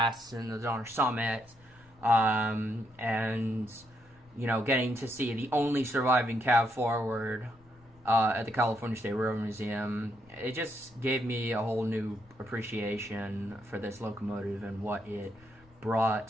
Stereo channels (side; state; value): left; noise; rumble, 27 dB below the sound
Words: and the Donner Summit, and, you know, getting to see the only surviving cab forward at the California State Railroad Museum, it just gave me a whole new appreciation for this locomotive and what it